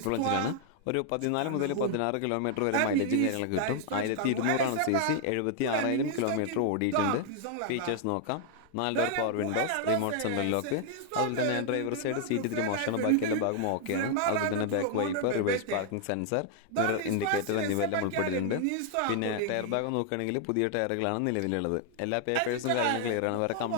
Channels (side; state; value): both; different; correlation 0.00